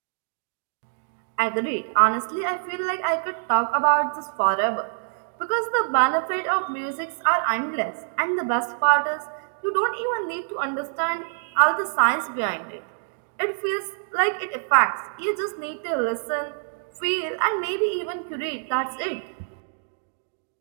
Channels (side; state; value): left; silent; digital silence